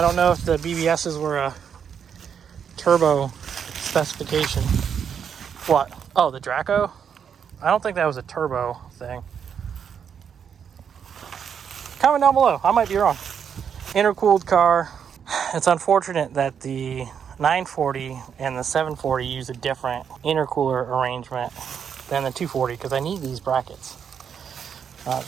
know if the BBSs were a turbo specification. What? Oh, the Draco? I don't think that was a turbo thing. Comment down below. I might be wrong. Intercooled car. It's unfortunate that the 940 and the 740 use a different intercooler arrangement than the 240 because I need these brackets.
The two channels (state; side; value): quieter; left; 7.6 dB